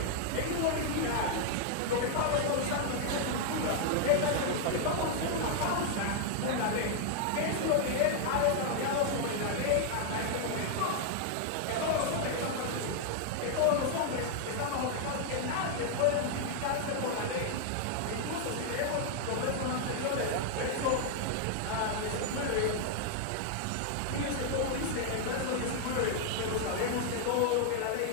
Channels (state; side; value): different; both; correlation 0.00